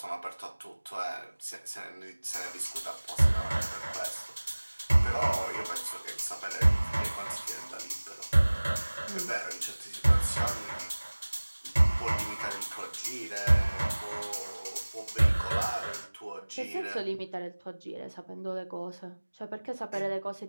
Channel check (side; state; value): both; inverted; correlation -1.00